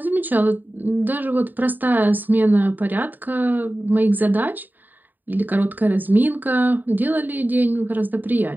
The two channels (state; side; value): late; left; 0.089 ms